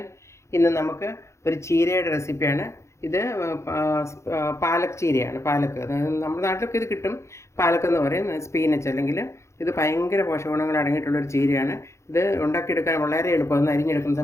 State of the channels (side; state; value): right; late; 0.14 ms